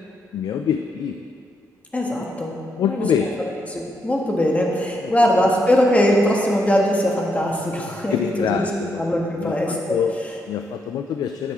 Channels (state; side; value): normal; both; correlation 0.79